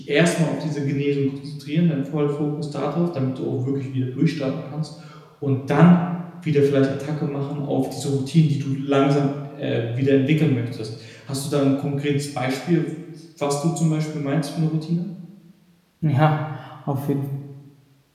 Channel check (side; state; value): both; identical; correlation 1.00